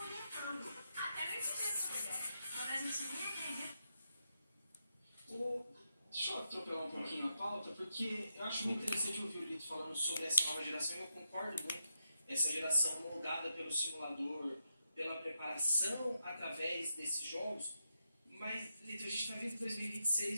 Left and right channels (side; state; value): both; inverted; correlation -0.85